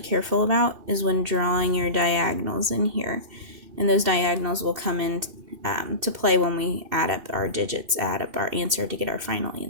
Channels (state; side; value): late; left; 2.7 ms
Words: careful about, is when drawing your diagonals in here. And those diagonals will come in to play when we add up our digits, add up our answer to get our final